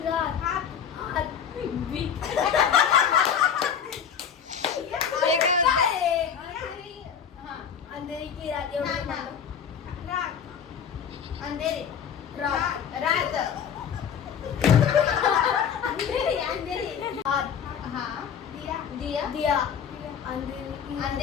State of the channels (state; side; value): quieter; right; 7.7 dB